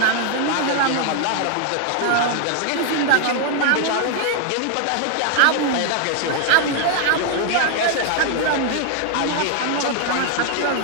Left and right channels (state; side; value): different; both; correlation 0.00